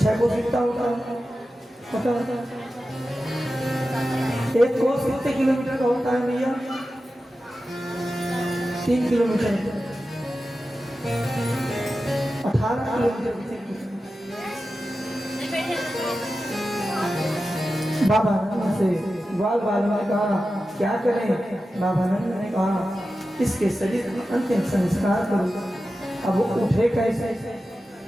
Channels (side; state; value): both; normal; correlation 0.93